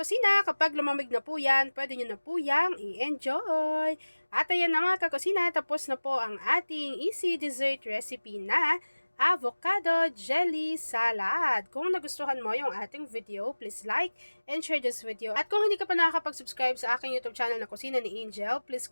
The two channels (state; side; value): inverted; both; correlation -1.00